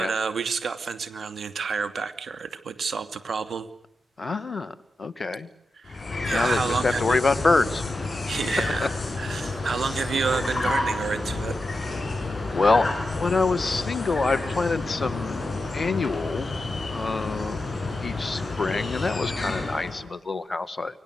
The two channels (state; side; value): normal; both; correlation 0.89